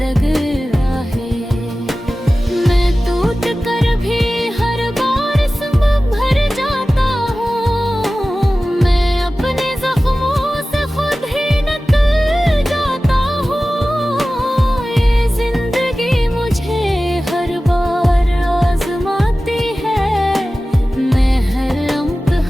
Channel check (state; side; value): normal; both; correlation 0.96